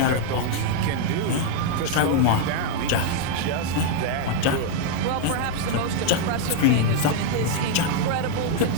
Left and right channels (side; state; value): both; different; correlation 0.00